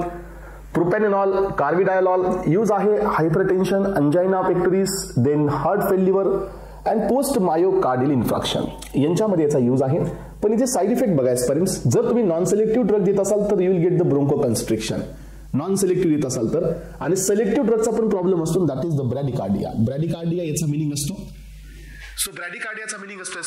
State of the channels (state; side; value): identical; both; correlation 1.00